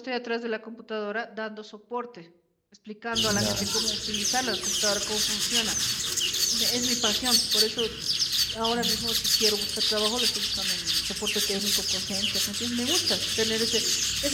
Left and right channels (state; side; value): identical; both; correlation 1.00